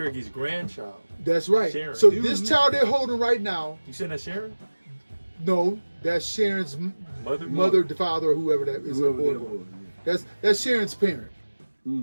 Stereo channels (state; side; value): inverted; both; correlation -1.00